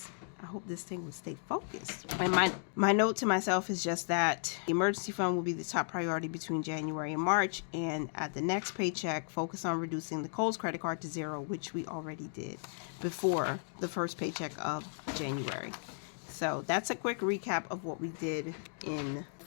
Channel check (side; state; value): right; silent; digital silence